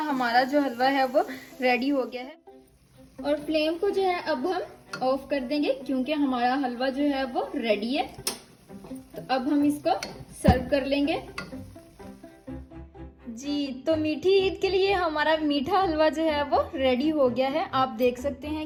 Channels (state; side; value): identical; both; correlation 1.00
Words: हमारा जो हलवा है वो रेडी हो गया है। और फ्लेम को जो है अब हम ऑफ कर देंगे क्योंकि हमारा हलवा जो है वो रेडी है। तो अब हम इसको सर्व कर लेंगे जी। तो मीठी ईद के लिए हमारा मीठा हलवा जो है वो रेडी हो गया है। आप देख सकते